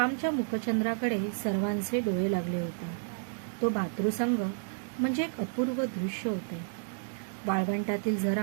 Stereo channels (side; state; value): left; silent; digital silence